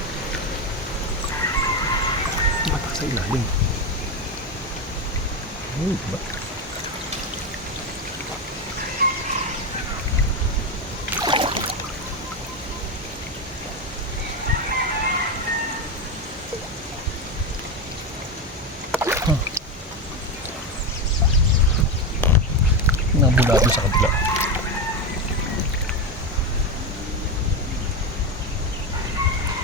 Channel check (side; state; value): both; normal; correlation 0.14